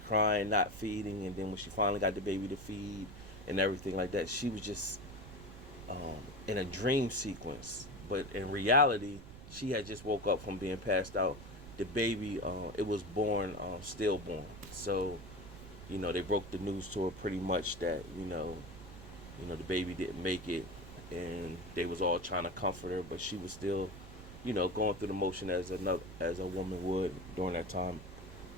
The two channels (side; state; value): right; noise; rumble, 14 dB below the sound